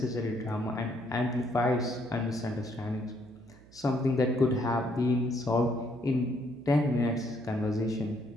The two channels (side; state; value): right; noise; hum, 24 dB below the sound